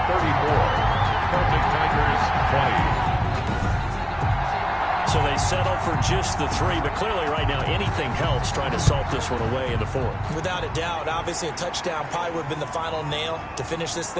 34. Celtic Tigers 20. So they settle for just the 3, but clearly right now anything helps trying to salt this one away in the 4th. Without a doubt, obviously a touchdown probably would have been the final nail to finish this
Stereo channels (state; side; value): identical; both; correlation 1.00